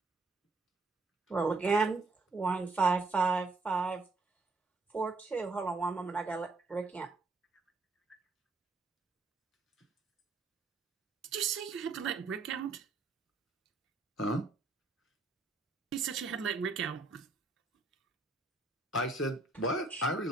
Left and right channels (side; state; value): left; quieter; 3.5 dB